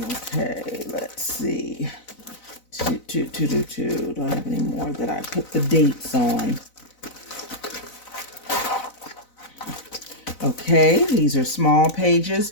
let's see. Do I have any more that I put the dates on? Okay, these are small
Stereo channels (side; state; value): right; late; 4.0 ms